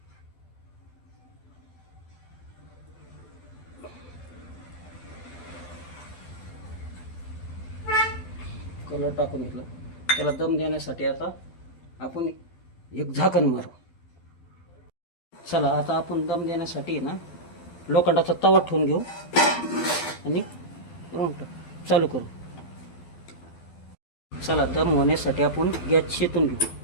कलर टाकून घेतला. त्याला दम देण्यासाठी आता आपण एक झाकण मारू. चला, आता आपण दम देण्यासाठी ना लोखंडाचा तवा ठेवून घेऊ आणि चालू करू. चला, दम होण्यासाठी आपण गॅस शेतून घेऊ.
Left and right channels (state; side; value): late; right; 12 ms